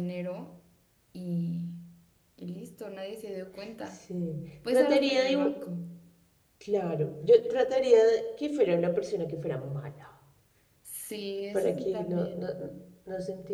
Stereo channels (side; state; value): both; identical; correlation 1.00